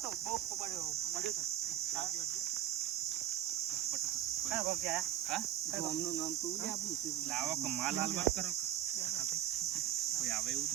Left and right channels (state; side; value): quieter; left; 12.0 dB